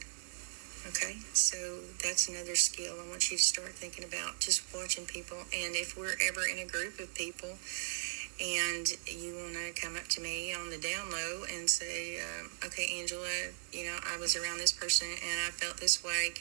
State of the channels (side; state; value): left; silent; digital silence